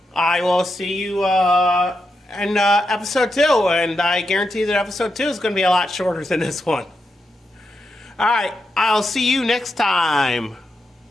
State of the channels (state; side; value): normal; both; correlation 0.86